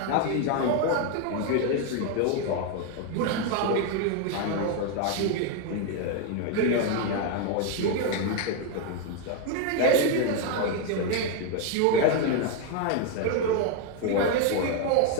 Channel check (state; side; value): different; both; correlation 0.01